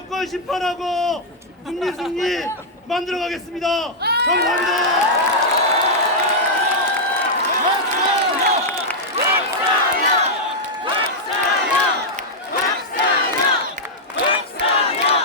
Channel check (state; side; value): normal; both; correlation -0.05